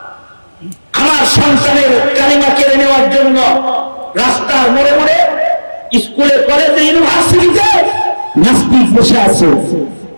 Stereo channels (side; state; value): both; inverted; correlation -1.00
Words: সন্তানের কালিমা কেড়ে নেওয়ার জন্য রাস্তার মোড়ে মোড়ে, স্কুলে, কলেজে, ইউনিভার্সিটিতে নাস্তিক বসে আছে